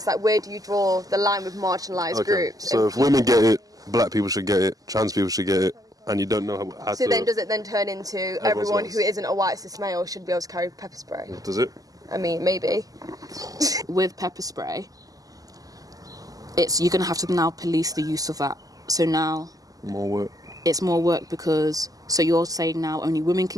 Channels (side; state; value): left; late; 0.17 ms